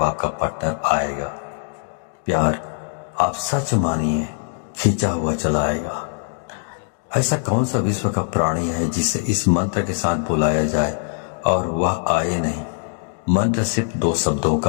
आपका पार्टनर आएगा। प्यार आप सच मानिए खींचा हुआ चला आएगा। ऐसा कौन सा विश्व का प्राणी है जिसे इस मंत्र के साथ बुलाया जाए और वह आए नहीं? मंत्र सिर्फ 2 शब्दों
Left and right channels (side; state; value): right; silent; digital silence